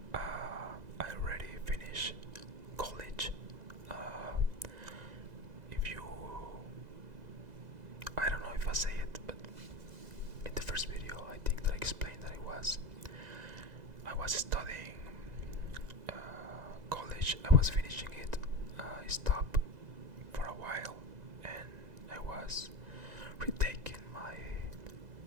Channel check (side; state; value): left; late; 1.9 ms